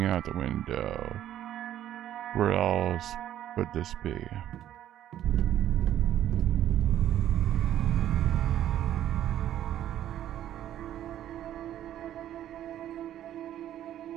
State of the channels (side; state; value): left; quieter; 11.7 dB